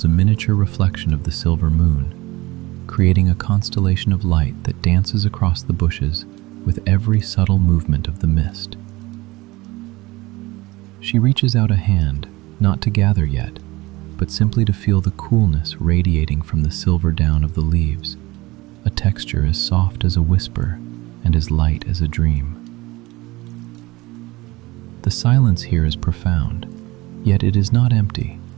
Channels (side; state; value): left; quieter; 20.9 dB